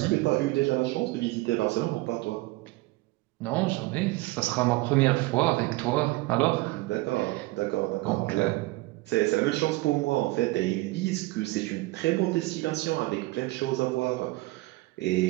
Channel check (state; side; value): quieter; left; 21.3 dB